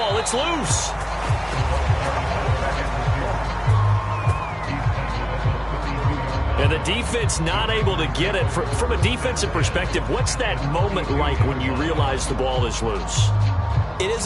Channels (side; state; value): both; identical; correlation 1.00